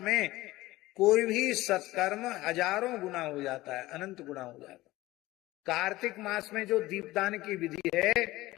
में कोई भी सत्कर्म हजारों गुना हो जाता है, अनंत गुना हो जाता है। कार्तिक मास में जो दीपदान की विधि है,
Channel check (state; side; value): quieter; right; 18.1 dB